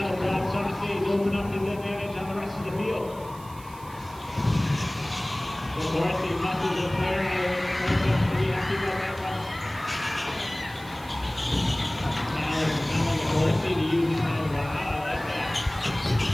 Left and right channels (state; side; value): noise; right; hiss, 21 dB below the sound